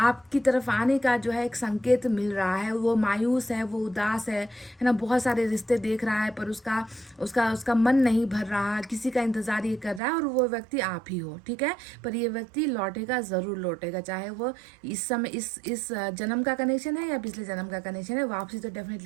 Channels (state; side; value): drops out; left; at 10.0 s